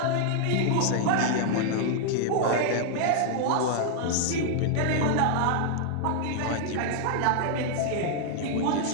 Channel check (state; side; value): different; both; correlation 0.00